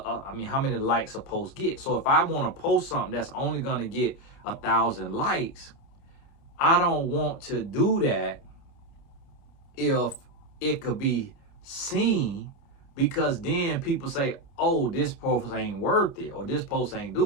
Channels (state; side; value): late; right; 29 ms